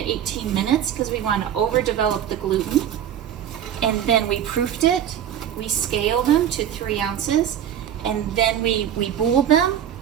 18 minutes because we want to overdevelop the gluten. And then we proofed it. We scaled them to 3 ounces. And then we booled them.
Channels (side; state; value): left; quieter; 9.9 dB